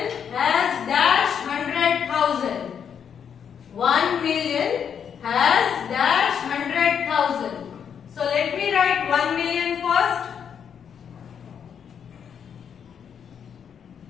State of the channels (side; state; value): right; quieter; 7.7 dB